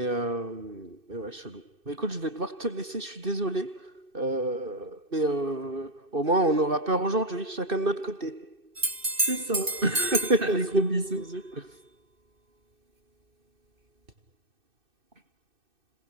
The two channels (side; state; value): left; late; 2.6 ms